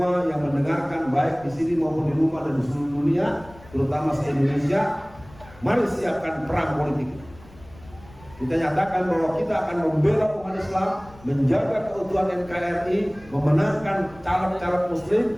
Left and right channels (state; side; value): noise; left; rumble, 22 dB below the sound